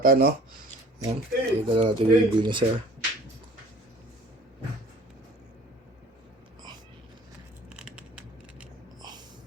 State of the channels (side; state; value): both; normal; correlation 0.49